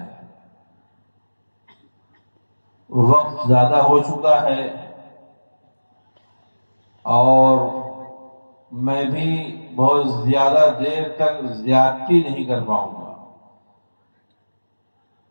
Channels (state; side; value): inverted; both; correlation -1.00